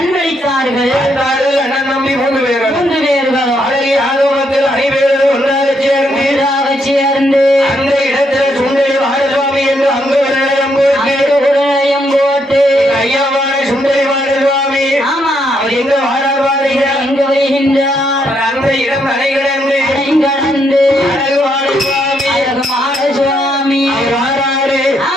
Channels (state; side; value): normal; both; correlation 0.76